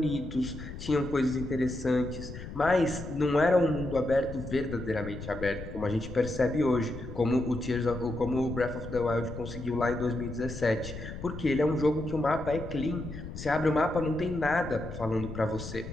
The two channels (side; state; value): left; noise; rumble, 10 dB below the sound